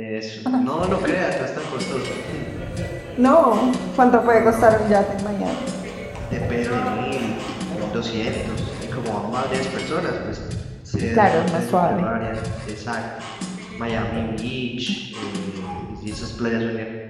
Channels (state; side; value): identical; both; correlation 1.00